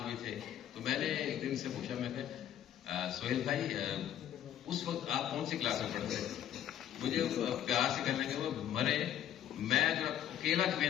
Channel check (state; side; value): quieter; right; 10.8 dB